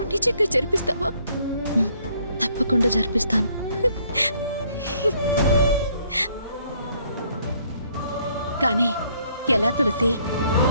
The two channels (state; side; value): inverted; both; correlation -0.66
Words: నిజంగా జరిపిస్తావా? తప్పకుండా జరిపిస్తాను. కానీ ఎలా తులసి?